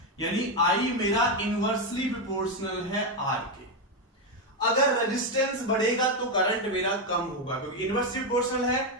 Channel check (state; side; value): normal; both; correlation 0.07